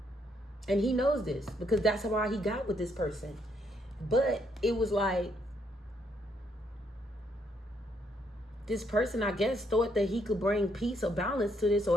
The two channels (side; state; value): both; normal; correlation 0.73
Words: and he knows this, because that's why he got with this person. But it was like, this person, I guess, thought that he could bring peace or balance to this,